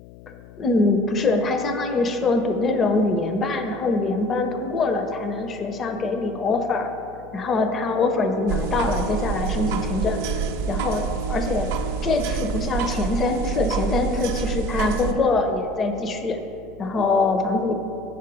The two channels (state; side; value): noise; left; hum, 20 dB below the sound